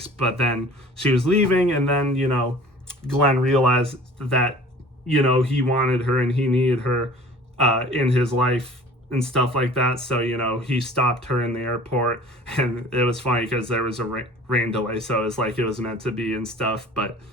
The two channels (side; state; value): both; normal; correlation 0.46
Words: But then she was leaving, and then, Glenn realized that, he wanted her and he needed her in his life and stuff like that. So, he stopped her in the airport, and it was funny because there was a rain delay. So it was like it was meant to be and stuff. But